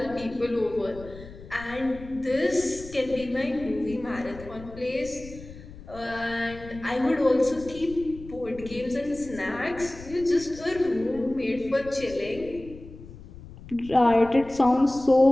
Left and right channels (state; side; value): noise; left; rumble, 16 dB below the sound